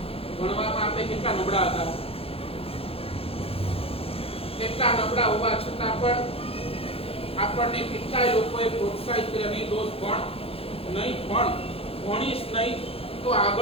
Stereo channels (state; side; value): late; right; 0.28 ms